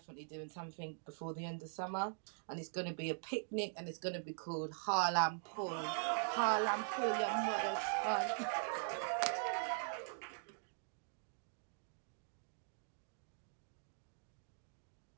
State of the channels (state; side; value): silent; left; digital silence